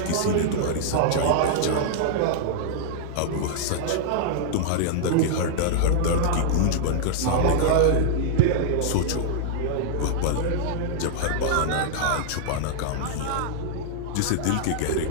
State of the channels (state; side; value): different; both; correlation -0.01